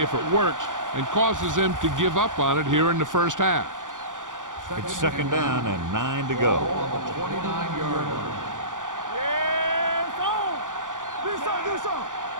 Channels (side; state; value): left; late; 0.88 ms